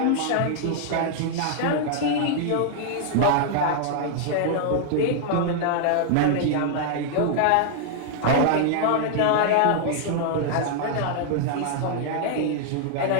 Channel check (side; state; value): both; different; correlation 0.00